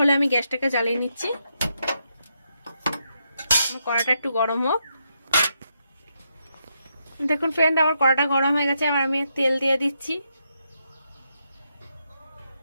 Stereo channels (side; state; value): both; inverted; correlation -0.81